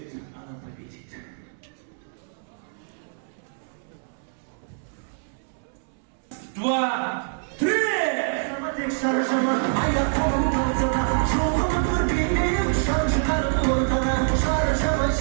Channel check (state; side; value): silent; left; 61 dB below the other